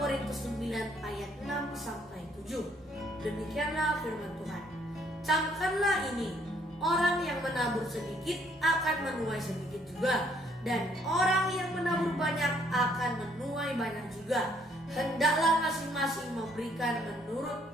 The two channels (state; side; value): normal; both; correlation 0.66